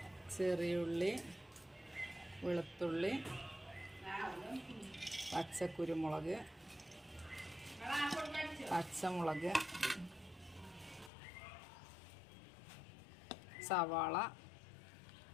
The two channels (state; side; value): drops out; right; at 11.1 s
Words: ചെറിയുള്ളി, വെളുത്തുള്ളി, പച്ചക്കുരുമുളക്, പച്ചമുളക്, സവാള,